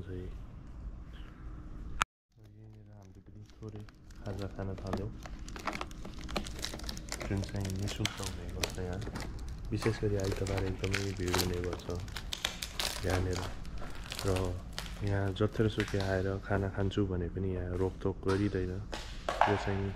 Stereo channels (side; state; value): both; identical; correlation 1.00